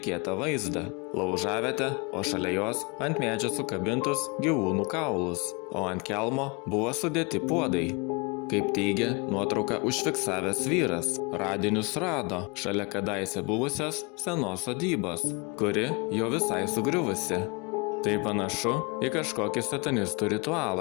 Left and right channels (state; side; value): quieter; right; 29.7 dB